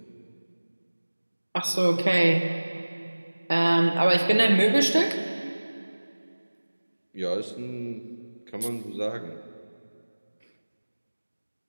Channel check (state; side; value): inverted; both; correlation -1.00